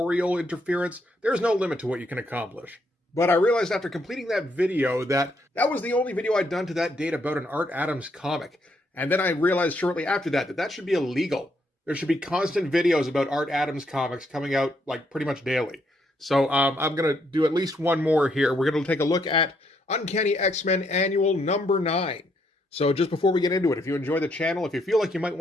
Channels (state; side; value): normal; both; correlation 0.74